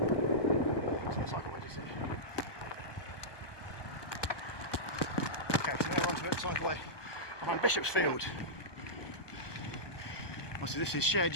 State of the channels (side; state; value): right; late; 1.2 ms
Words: the cycleway just in. Okay, so now we're onto it, cycleway behind Bishopsfield. Obviously this is shared